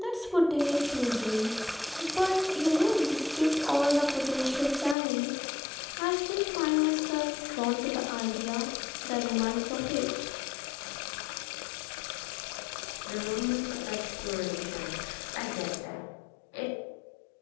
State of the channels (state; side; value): drops out; right; at 5.0 s